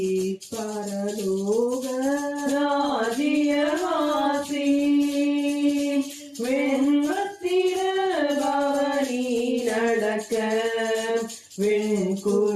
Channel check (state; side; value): identical; both; correlation 1.00